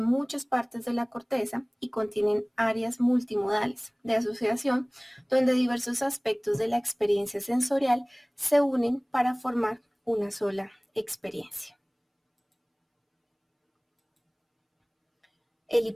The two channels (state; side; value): identical; both; correlation 1.00